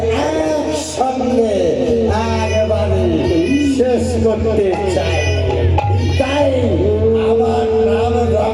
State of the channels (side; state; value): both; identical; correlation 1.00